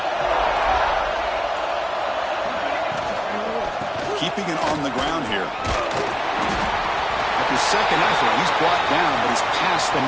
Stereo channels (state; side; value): identical; both; correlation 1.00